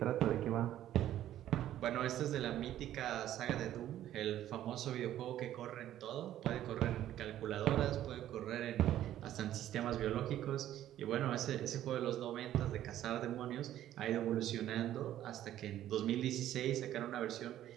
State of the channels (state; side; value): quieter; left; 12.4 dB